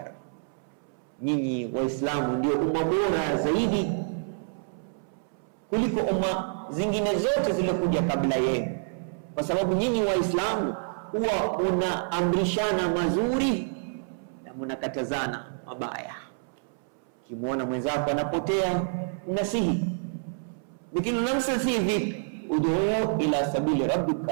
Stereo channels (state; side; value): silent; left; 60 dB below the other